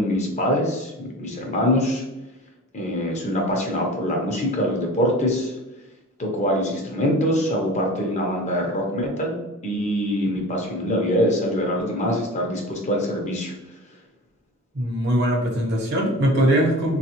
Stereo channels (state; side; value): normal; both; correlation 0.37